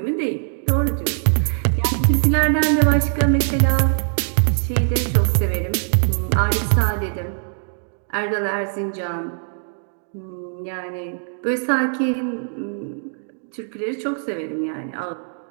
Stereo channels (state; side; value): silent; left; digital silence